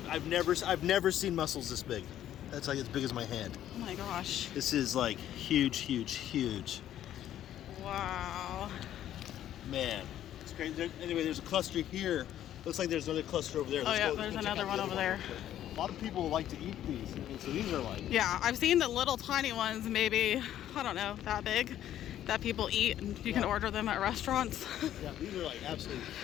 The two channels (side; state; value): right; quieter; 11.7 dB